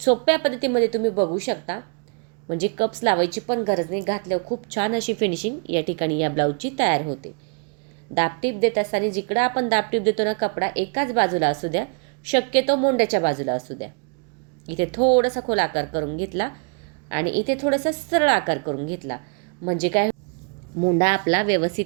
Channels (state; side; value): quieter; left; 38.6 dB